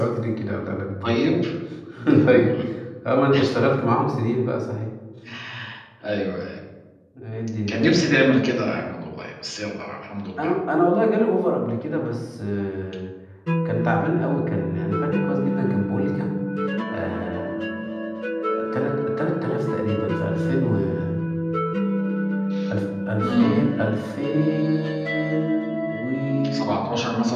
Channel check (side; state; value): both; identical; correlation 1.00